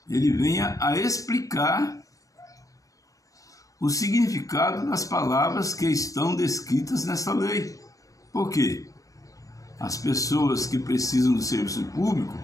ele venha a explicar o significado das palavras que estão descritas nessa lei. Por quê? As pessoas que precisam do serviço público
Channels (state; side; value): late; right; 0.16 ms